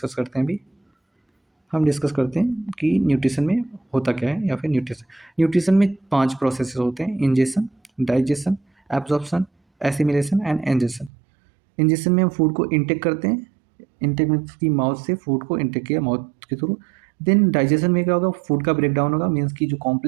करते हैं अभी। हम डिस्कस करते हैं कि न्यूट्रिशन में होता क्या है, या फिर न्यूट्रिशन में 5 प्रोसेसेस होते हैं: ingestion, digestion, absorption, assimilation and egestion. Ingestion में हम फूड को इंटेक करते हैं, इंटेक मीन्स की माउथ से फूड को इंटेक किया माउथ के थ्रू। देन डाइजेशन में क्या होगा, फूड का ब्रेक डाउन होगा, मीन्स की जो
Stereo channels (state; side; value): drops out; left; at 11.1 s